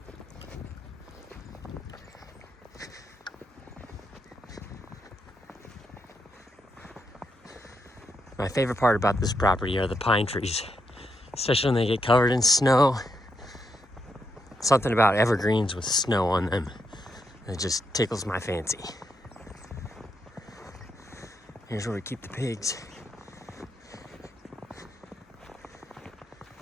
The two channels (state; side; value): normal; both; correlation 0.81